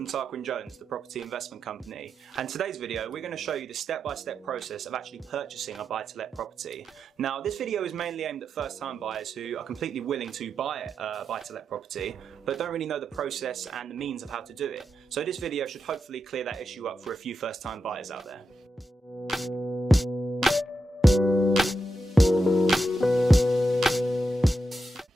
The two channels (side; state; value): both; normal; correlation 0.87